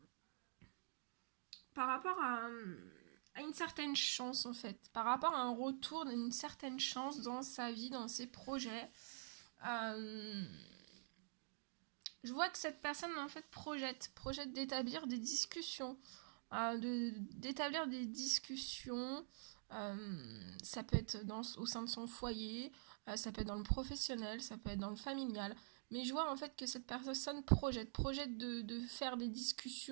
une certaine chance en fait, par rapport à un retour d'une certaine chance dans sa vie, dans ses projets. Je vois que cette personne en fait projette d'établir des discussions, d'établir des discussions. Ça peut être au sein de son foyer, ça peut être dans le professionnel, ça peut être dans le familial. Mais je vois en fait que cette personne projette de faire des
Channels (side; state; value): left; silent; digital silence